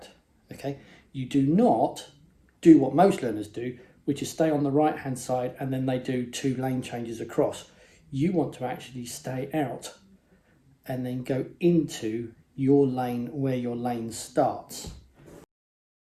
Okay, you do not do what most learners do, which is stay on the right hand side and then they do 2 lane changes across. You want to actually stay out and then go into your lane where your lane starts.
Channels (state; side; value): identical; both; correlation 1.00